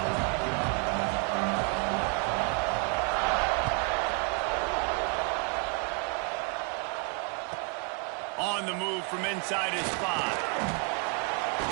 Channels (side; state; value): left; quieter; 39.4 dB